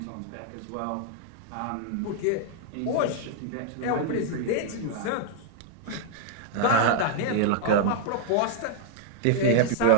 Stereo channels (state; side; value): different; both; correlation -0.01